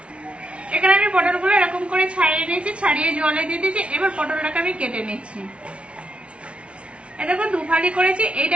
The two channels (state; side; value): late; left; 0.060 ms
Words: এখানে আমি পটলগুলো এরকম করে ছাড়িয়ে নিয়েছি, ছাড়িয়ে জলে দিয়ে দিয়েছি। এবার পটলটাকে আমি কেটে নিচ্ছি। এই দেখুন 2 ফালি করেছি,